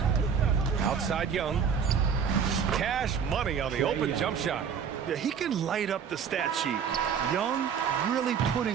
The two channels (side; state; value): left; quieter; 7.1 dB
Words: Outside Young. Cash money on the open jump shot. Yeah, he can light up the stat sheet. Young really